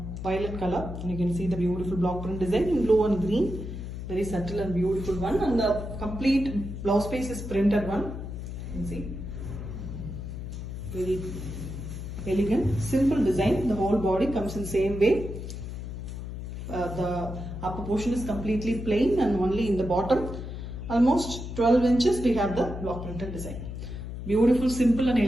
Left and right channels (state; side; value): noise; left; hum, 7 dB below the sound